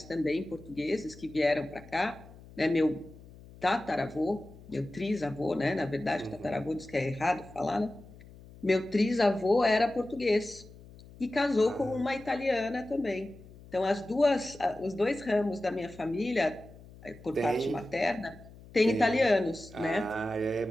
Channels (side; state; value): left; noise; hum, 20 dB below the sound